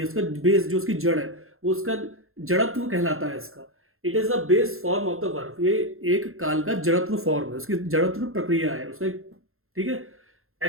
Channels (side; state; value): left; late; 0.61 ms